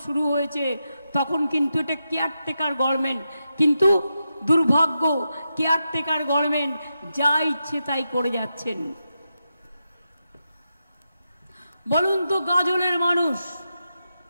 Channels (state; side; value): inverted; both; correlation -0.88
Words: শুরু হয়েছে তখন কিন্তু এটা কেয়ারটেকার গভর্নমেন্ট। কিন্তু দুর্ভাগ্য, কেয়ারটেকার গভর্নমেন্ট যা ইচ্ছে তাই করে যাচ্ছেন। বলুন তো, গাজলের মানুষ